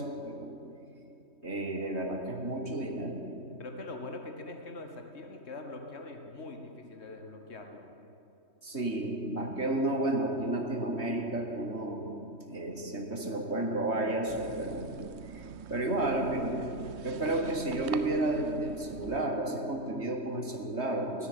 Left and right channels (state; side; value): late; right; 3.2 ms